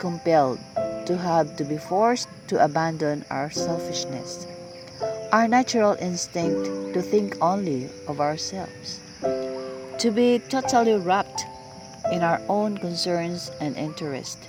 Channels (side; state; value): both; identical; correlation 1.00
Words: to be forced to abandon our selfishness, our natural instinct to think only of ourselves, to be totally wrapped in our own concerns and interests.